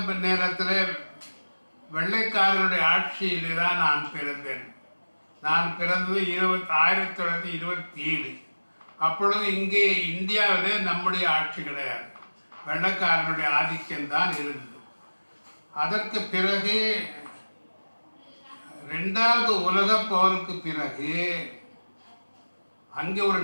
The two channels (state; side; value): inverted; both; correlation -1.00